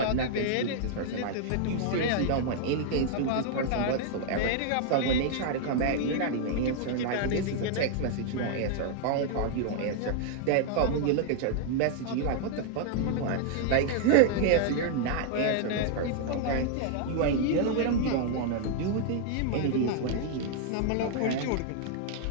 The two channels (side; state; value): both; different; correlation 0.00